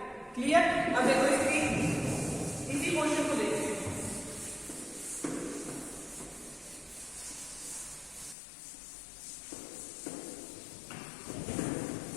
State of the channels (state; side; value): drops out; right; at 8.3 s